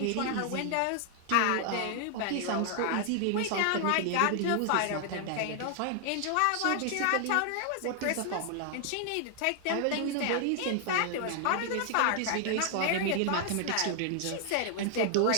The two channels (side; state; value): both; different; correlation 0.00